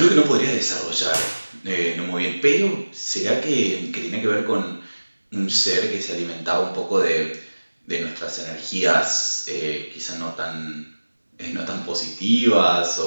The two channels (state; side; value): inverted; both; correlation -1.00